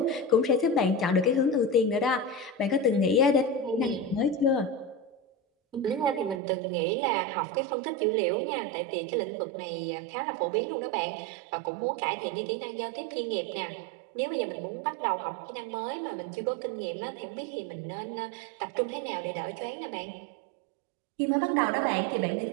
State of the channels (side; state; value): left; drops out; at 6.4 s